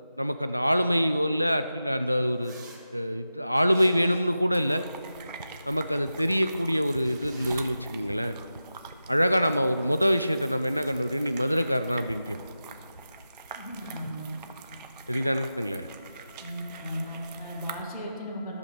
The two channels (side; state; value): both; inverted; correlation -0.92